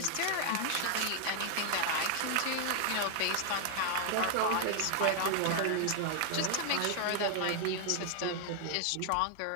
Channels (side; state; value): both; different; correlation 0.00